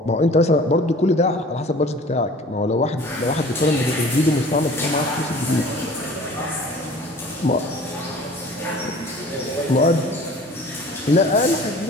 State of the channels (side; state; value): both; normal; correlation 0.46